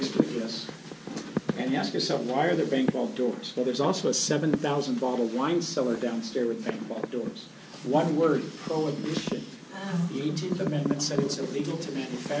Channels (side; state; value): both; identical; correlation 1.00